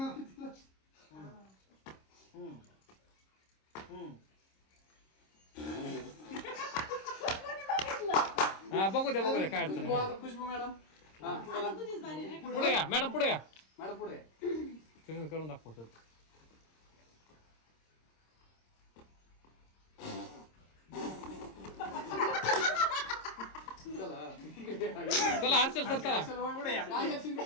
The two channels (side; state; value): right; late; 26 ms